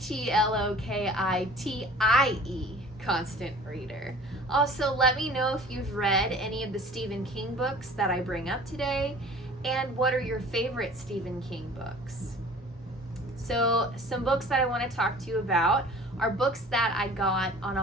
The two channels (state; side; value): normal; both; correlation 0.46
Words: Constant Reader. Also, let me know if you've read any of the Stephen King books that I bring up today, and what are your favorite Stephen King books. So, some books that I want to talk to you about are books that I got on